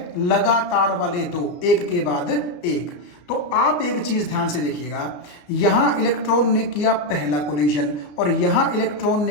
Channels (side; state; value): right; late; 34 ms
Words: लगातार वाले दो, एक के बाद एक। तो आप एक चीज ध्यान से देखिएगा, यहां इलेक्ट्रॉन ने किया पहला कोलिजन और यहां इलेक्ट्रॉन